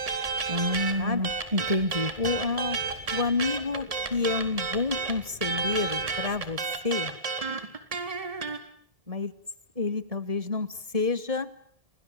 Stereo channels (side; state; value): left; late; 1.7 ms